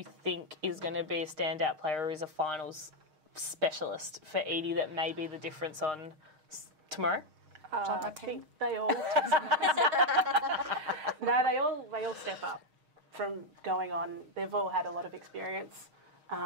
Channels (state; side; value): late; left; 6.4 ms